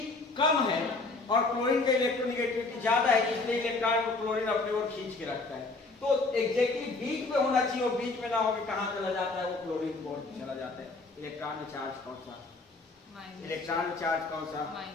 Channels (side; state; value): right; quieter; 3.5 dB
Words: कम है और क्लोरीन का इलेक्ट्रोनेगेटिविटी ज्यादा है, इसलिए इलेक्ट्रॉन को क्लोरीन अपनी ओर खींच के रखता है। तो एग्जैक्टली बीच में होना चाहिए, और बीच में ना होकर कहां चला जाता है? वो क्लोरीन की ओर चला जाता है। इलेक्ट्रॉन में चार्ज कौन सा? इलेक्ट्रॉन चार्ज कौन सा?